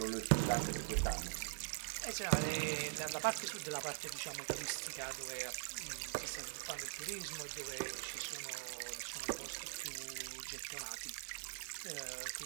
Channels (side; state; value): left; silent; digital silence